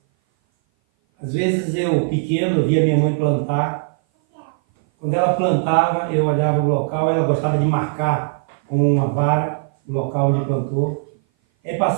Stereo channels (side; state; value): left; silent; 57 dB below the other